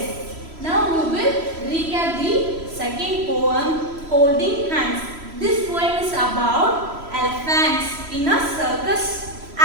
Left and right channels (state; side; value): late; left; 3.0 ms